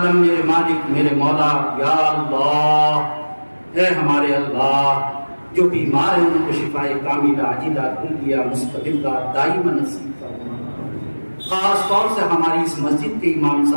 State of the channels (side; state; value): both; inverted; correlation -1.00